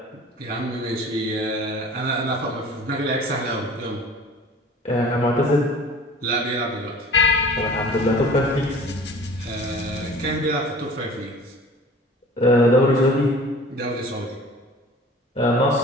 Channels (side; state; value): both; normal; correlation 0.44